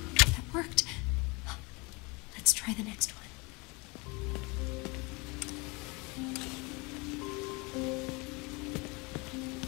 That worked. Let's try the next one.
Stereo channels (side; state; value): right; quieter; 27.5 dB